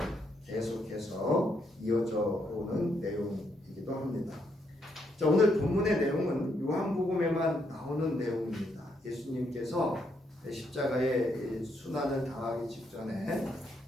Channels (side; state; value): both; normal; correlation 0.76